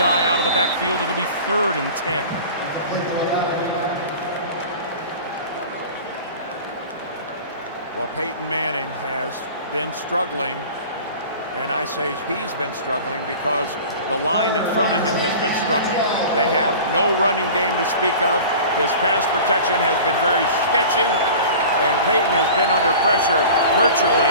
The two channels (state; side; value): inverted; both; correlation -0.39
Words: out of the backfield. It'll be 3rd and 10. Well, Peyton Manning has been struggling, and I say he's been struggling because the line in front of him has been struggling. They have no running game to speak of. His pass protection has been very sketchy, and Peyton has been under pressure